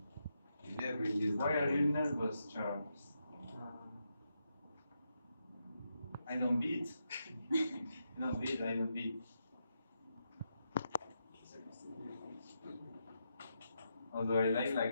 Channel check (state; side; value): inverted; both; correlation -0.83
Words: You never use Why that. are you nervous, Charles? I don't beat. I don't beat. I don't beat. Although I like